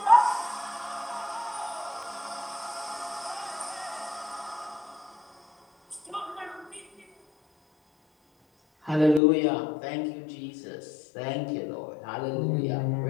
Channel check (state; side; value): drops out; right; at 9.2 s